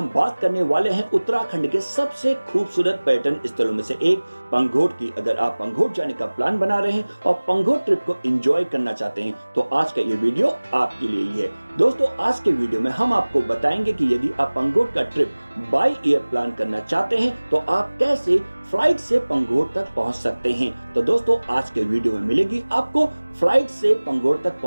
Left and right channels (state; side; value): inverted; both; correlation -1.00